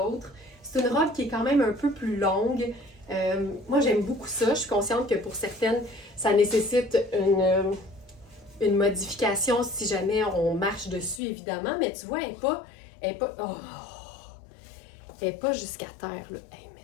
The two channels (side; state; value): right; drops out; at 11.2 s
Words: C'est une robe qui est quand même un peu plus longue, Moi, j'aime beaucoup ça. Je suis consciente que pour certaines, ça nécessite une modification si jamais on marche dessus, évidemment. Mais tu vois, elle est pas jusqu'à terre, là. Hey,